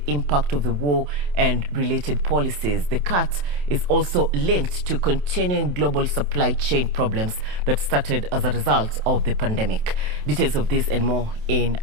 impact of the war and related policies. The cut is also linked to continuing global supply chain problems that started as a result of the pandemic. Details of this and more in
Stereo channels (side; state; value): left; late; 27 ms